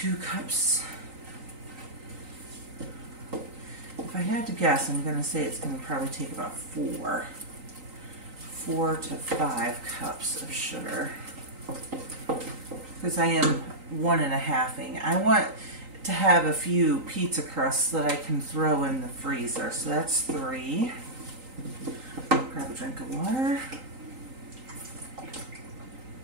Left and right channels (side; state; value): left; late; 3.9 ms